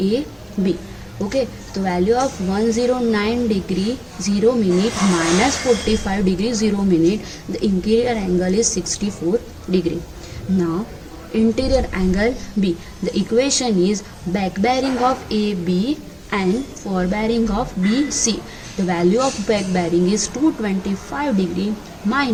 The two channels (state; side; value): identical; both; correlation 1.00